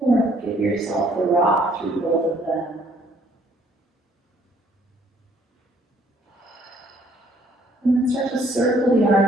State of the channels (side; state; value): both; normal; correlation 0.63